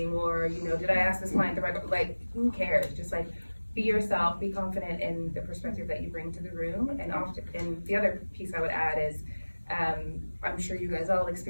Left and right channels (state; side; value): inverted; both; correlation -1.00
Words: or, you know, did I ask this client the right, like, who cares? Just like, be yourself, be confident in the perspective that you bring to the room. And the other piece I would add is, I'm sure you guys all